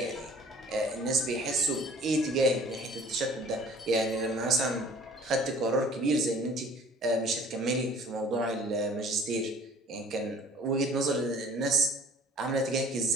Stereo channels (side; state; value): both; normal; correlation 0.51